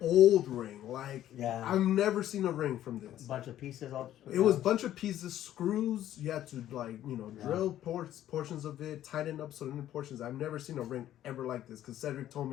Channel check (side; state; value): right; quieter; 12.3 dB